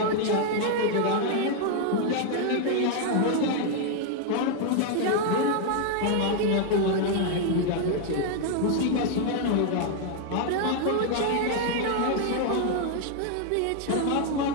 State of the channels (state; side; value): different; both; correlation 0.00